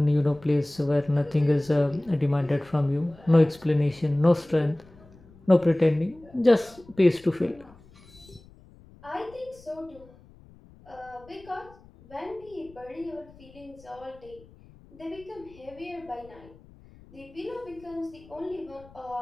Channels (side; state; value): left; noise; rumble, 24 dB below the sound